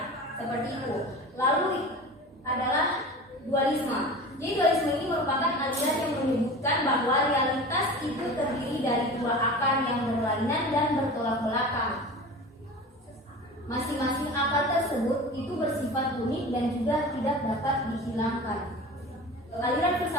seperti itu. Lalu adalah dualisme. Jadi dualisme ini merupakan aliran yang menyebutkan bahwa realitas itu terdiri dari dua akar yang berlainan dan bertolak belakang. Masing-masing akar tersebut itu bersifat unik dan juga tidak dapat dihilangkan. Aliran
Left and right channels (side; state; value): both; normal; correlation 0.35